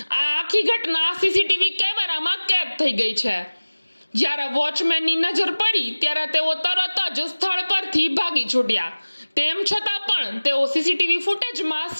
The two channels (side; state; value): both; inverted; correlation -1.00